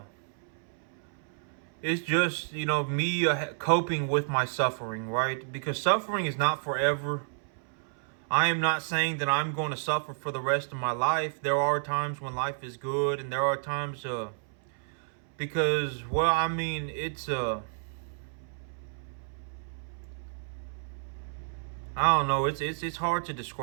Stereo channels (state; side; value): silent; left; 57 dB below the other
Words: it's just, me coping with my suffering, right? Because suffering is not forever. I am not saying that I'm going to suffer for the rest of my life. There are times when life is good, and there are times because, well, I mean, it's I don't know, it's hard to